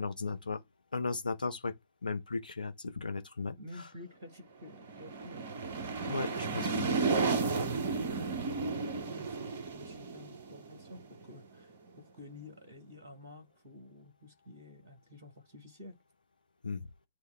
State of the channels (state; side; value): inverted; both; correlation -0.57